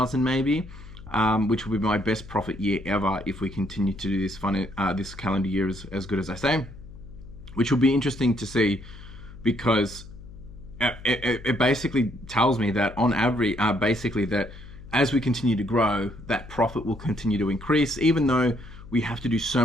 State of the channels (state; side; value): noise; left; hum, 16 dB below the sound